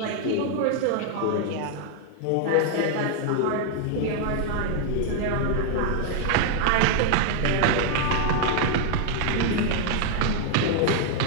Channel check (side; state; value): both; different; correlation 0.00